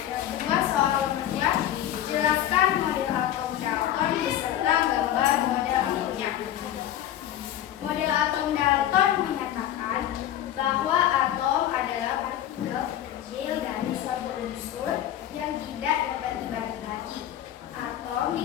kedua, soal nomor 2, jelaskan model atom Dalton beserta gambar model atomnya. Model atom Dalton menyatakan bahwa atom adalah partikel kecil dari suatu unsur yang tidak dapat dibagi lagi. Atom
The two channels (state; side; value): quieter; right; 11.7 dB